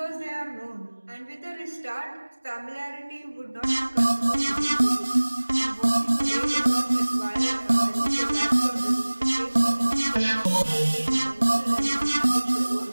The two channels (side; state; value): both; inverted; correlation -1.00